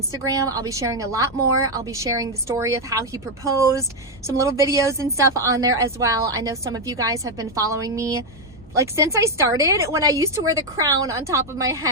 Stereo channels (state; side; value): normal; both; correlation 0.04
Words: I'll be sharing a lot more. I'll be sharing the story of how he proposed, some little videos and stuff on there as well. I know some of you guys have been following me like since I started, when I used to wear the crown on top of my